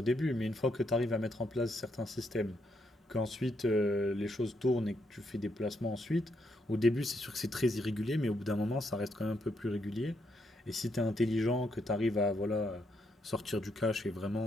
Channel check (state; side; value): normal; both; correlation 0.77